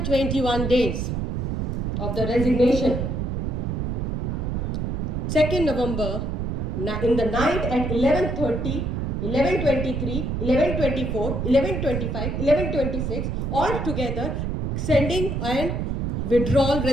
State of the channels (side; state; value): right; noise; rumble, 1 dB below the sound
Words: days of the resignation, 2nd November, in the night at 11:30, 11:23, 11:24, 11:25, 11:26, all together sending an withdrawal